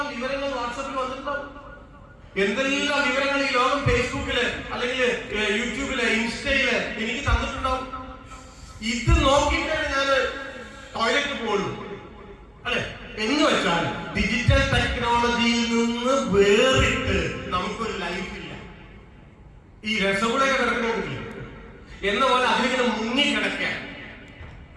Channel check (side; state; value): both; identical; correlation 1.00